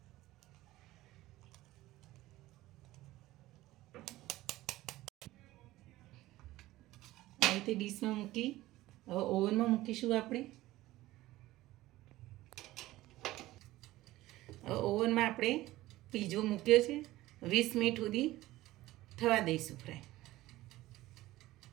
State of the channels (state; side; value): quieter; left; 16.9 dB